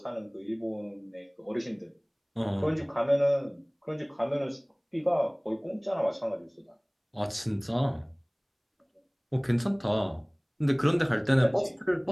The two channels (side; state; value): both; identical; correlation 1.00